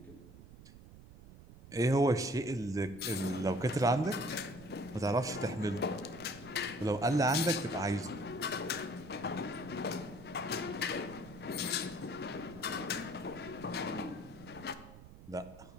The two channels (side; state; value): right; noise; rumble, 18 dB below the sound